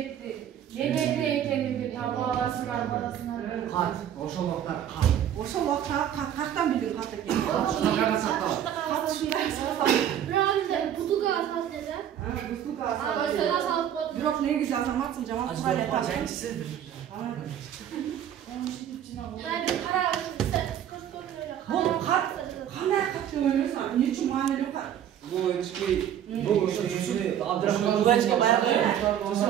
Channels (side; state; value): left; quieter; 10.2 dB